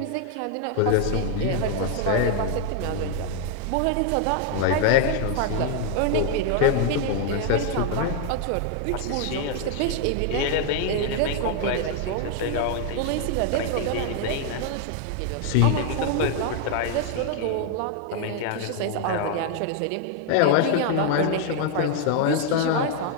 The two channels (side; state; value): both; different; correlation 0.00